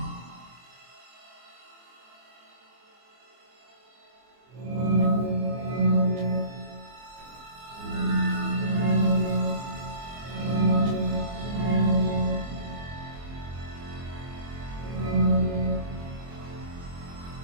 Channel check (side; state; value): left; late; 24 ms